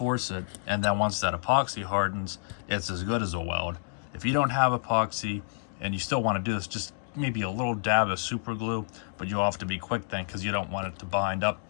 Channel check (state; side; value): silent; right; 59 dB below the other